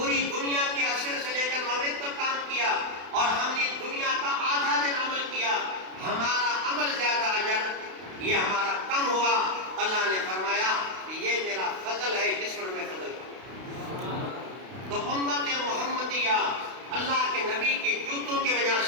دنیا کے عصر سے لے کر مغرب تک کام کیا، اور ہم نے دنیا کا آدھا دن عمل کیا، ہمارا عمل زیادہ اجر، یہ ہمارا کم ہوا۔ اللہ نے فرمایا یہ میرا فضل ہے، کس پر میں فضل کروں؟ تو امت محمدیہ اللہ کے نبی کے جوتوں کی وجہ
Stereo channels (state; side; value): late; left; 32 ms